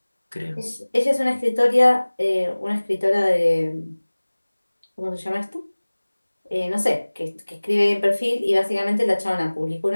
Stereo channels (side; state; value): both; inverted; correlation -1.00